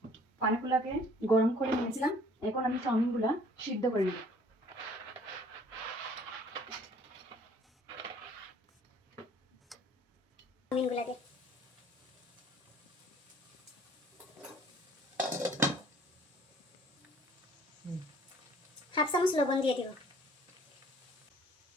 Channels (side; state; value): both; normal; correlation 0.55